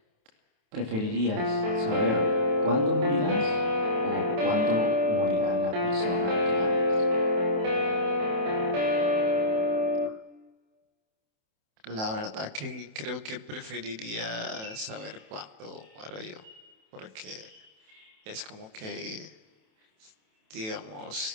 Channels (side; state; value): left; late; 28 ms